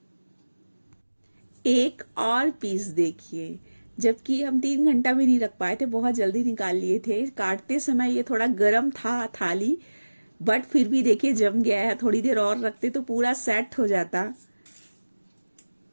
एक और पीस देखिए, जबकि हम 3 घंटा भी नहीं रख पाए थे, बहुत जल्दी निकाल लिए थे। काटते समय ये थोड़ा गर्म था थाली, बट फिर भी देखिए जम गया है। थोड़ी देर और रखते तो पूरा सेट हो जाता।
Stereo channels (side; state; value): both; inverted; correlation -1.00